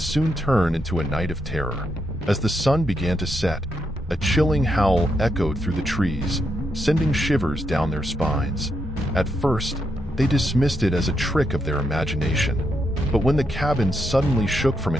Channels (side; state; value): both; normal; correlation 0.81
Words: turn into a night of terror. As the sun began to set, a chilling howl echoed through the trees, sending shivers down their spines. At first, they dismissed it as a trick of their imagination. But when the cabin suddenly shook from